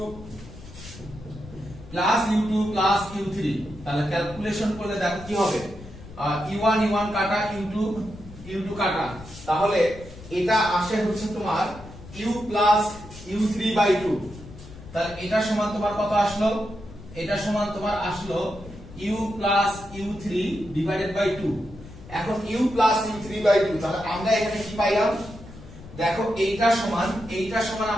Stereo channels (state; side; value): noise; left; rumble, 16 dB below the sound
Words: plus u2 plus u3। তাহলে ক্যালকুলেশন করলে দেখো কি হবে, u1 u1 কাটা u2 কাটা, তাহলে এটা আসে হচ্ছে তোমার u প্লাস u3 বাই 2। তাহলে এটা সমান তোমার কত আসলো, এটা সমান তোমার আসলো u plus u3 divided by 2। এখন u প্লাস u3 বাই 2, তাহলে আমরা এখানে কি পাইলাম, দেখো এইটা সমান